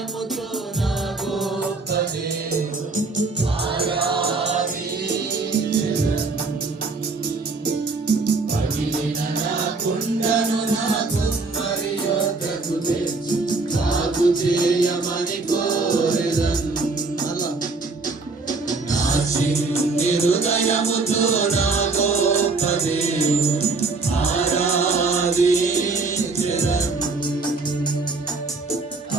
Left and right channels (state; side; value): quieter; left; 3.8 dB